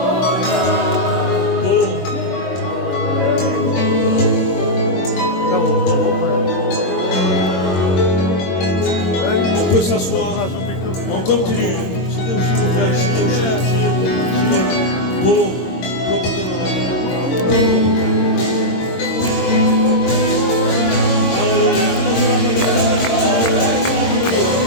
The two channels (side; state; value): right; late; 22 ms